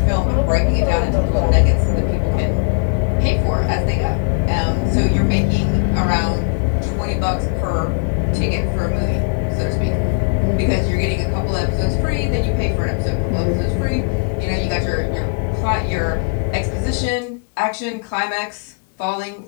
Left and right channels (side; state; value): right; quieter; 35.5 dB